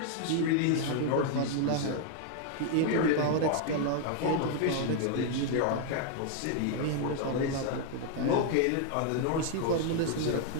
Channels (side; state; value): both; different; correlation 0.00